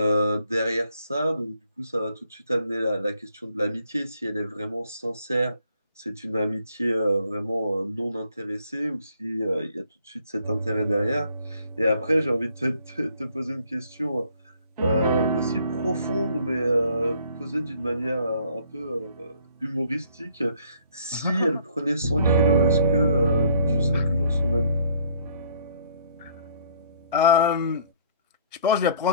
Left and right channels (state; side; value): inverted; both; correlation -0.62